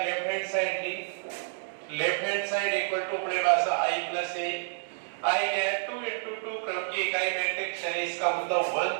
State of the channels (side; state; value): left; silent; digital silence